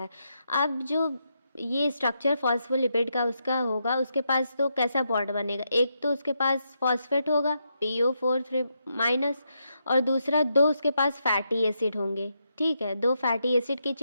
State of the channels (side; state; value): both; inverted; correlation -0.82